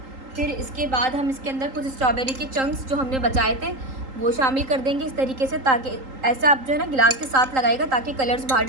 फिर इसके बाद हम इसके अंदर कुछ स्ट्रॉबेरी के चंक्स जो हमने बचाए थे वो शामिल कर देंगे इस तरीके से, ताकि ऐसे आप जो है ना गिलास के साथ लगाएगा ताकि कलर्स बाहर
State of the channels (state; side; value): late; left; 3.8 ms